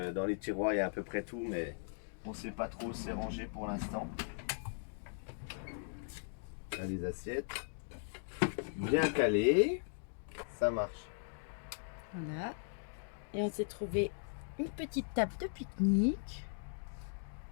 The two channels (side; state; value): right; silent; digital silence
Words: les tiroirs il y a à peu près tout, mais on ne sait pas trop où c'est rangé pour l'instant. Là les assiettes. Bien calées. Ça marche. Voilà. Et on s'est trouvé une petite table de pique-nique.